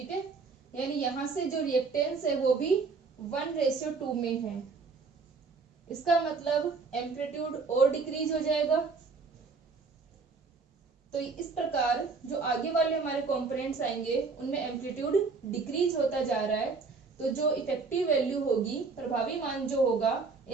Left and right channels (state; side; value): quieter; left; 4.6 dB